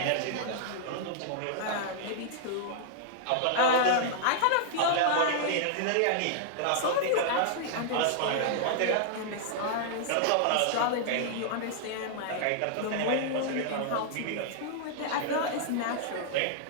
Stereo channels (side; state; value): both; different; correlation -0.01